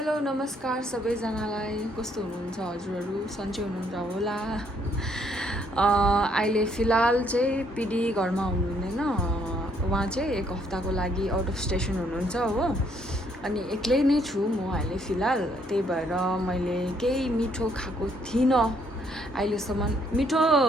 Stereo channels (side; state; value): both; normal; correlation 0.69